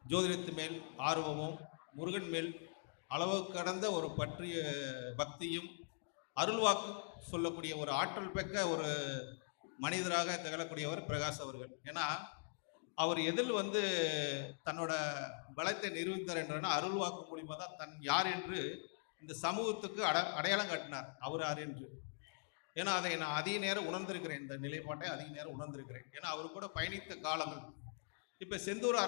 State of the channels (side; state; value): right; silent; digital silence